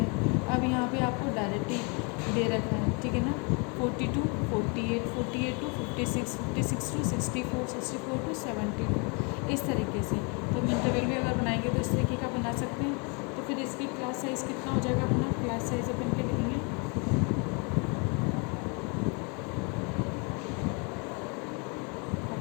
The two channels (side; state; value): right; quieter; 33.2 dB